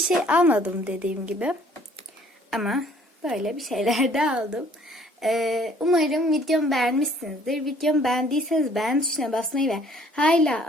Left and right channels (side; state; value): both; normal; correlation 0.58